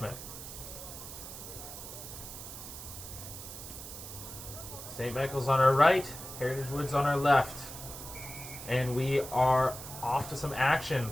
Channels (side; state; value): right; noise; hiss, 11 dB below the sound